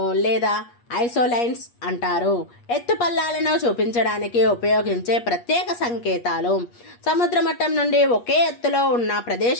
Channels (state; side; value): late; right; 8.4 ms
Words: లేదా ఐసోలైన్స్ అంటారు. ఎత్తుపల్లాలను చూపించడానికి ఉపయోగించే ప్రత్యేక సంకేతాలు సముద్ర మట్టం నుండి ఒకే ఎత్తులో ఉన్న